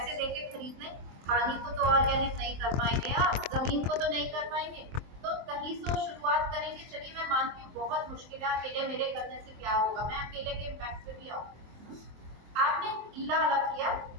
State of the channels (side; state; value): left; late; 23 ms